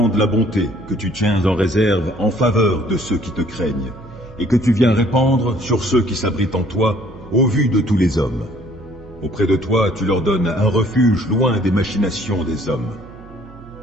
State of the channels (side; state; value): right; noise; hum, 20 dB below the sound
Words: la bonté que tu tiens en réserve en faveur de ceux qui te craignent, et que tu viens répandre sur ceux qui s'abritent en toi, au vu de tous les hommes. Auprès de toi, tu leur donnes un refuge loin des machinations des hommes.